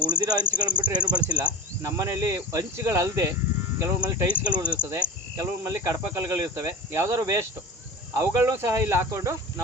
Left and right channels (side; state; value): both; normal; correlation 0.26